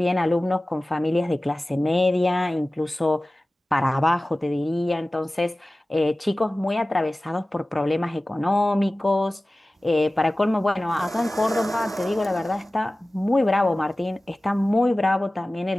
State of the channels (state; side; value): normal; both; correlation 0.97